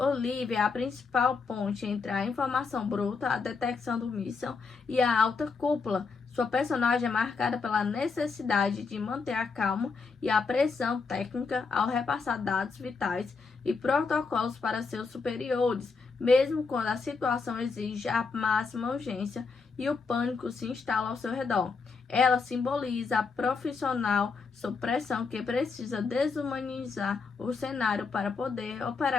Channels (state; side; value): quieter; right; 4.8 dB